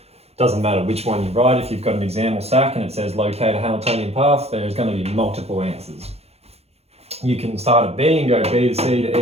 Doesn't matter which one you write. If you've got an exam or SAC and it says locate a Hamiltonian path, there's going to be multiple answers. You can start at B and go B to C to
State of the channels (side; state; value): left; late; 0.30 ms